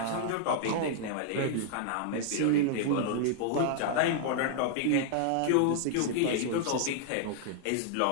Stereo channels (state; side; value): different; both; correlation 0.00